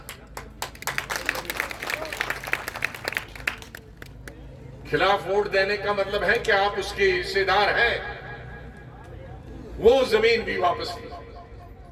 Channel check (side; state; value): both; identical; correlation 1.00